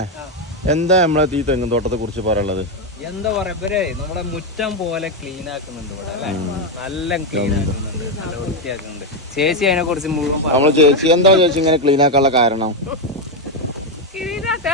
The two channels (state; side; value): normal; both; correlation 0.06